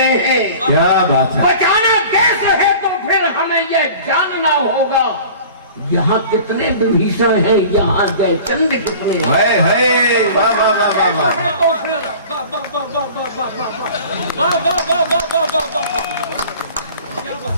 हैं। क्या बात है। बचाना कैसे है तो फिर हमें यह जानना होगा। यहाँ कितने विभीषण हैं, यहाँ जयचंद कितने हैं। वाह वाह वाह वाह वाह। तो फिर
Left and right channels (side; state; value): both; inverted; correlation -0.43